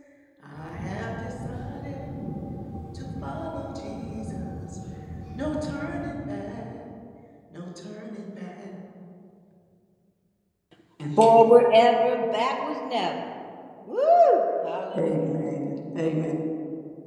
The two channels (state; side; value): identical; both; correlation 1.00